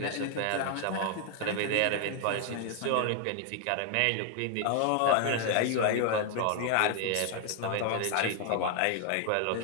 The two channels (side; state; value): both; different; correlation 0.00